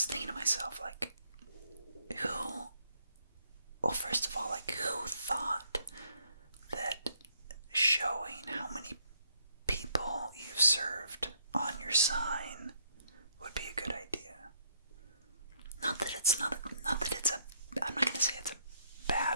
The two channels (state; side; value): inverted; both; correlation -0.70